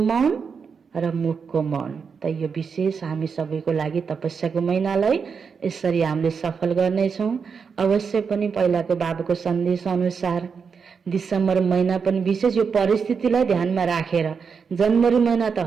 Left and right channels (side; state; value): left; quieter; 5.9 dB